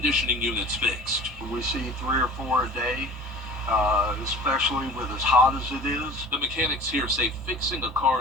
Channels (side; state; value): both; normal; correlation 0.41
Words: units fixed. We see 3 or 4 a day, especially with as hot as it is. The mechanics here say fixing a